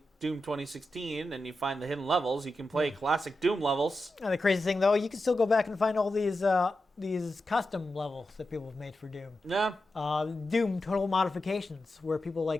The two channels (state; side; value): normal; both; correlation 0.90